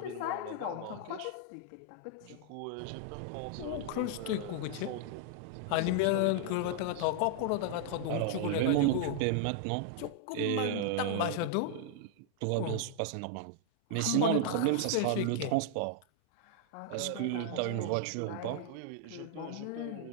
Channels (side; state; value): both; different; correlation -0.01